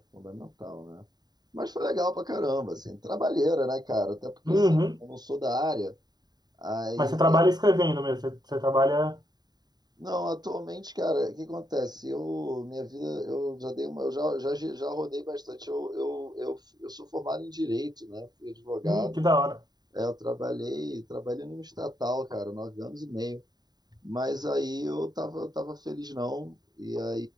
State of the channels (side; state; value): left; late; 0.20 ms